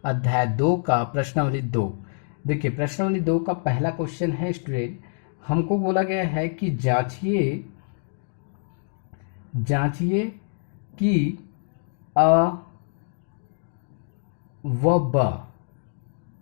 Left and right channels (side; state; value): right; silent; digital silence